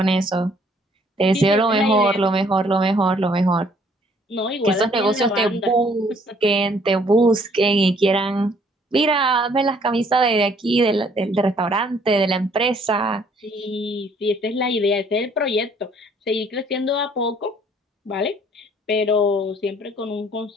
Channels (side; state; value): both; normal; correlation 0.62